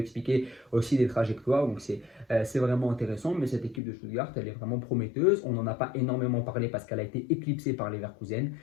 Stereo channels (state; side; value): drops out; right; at 3.8 s